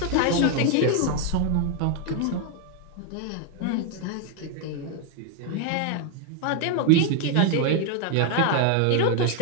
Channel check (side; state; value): both; different; correlation 0.01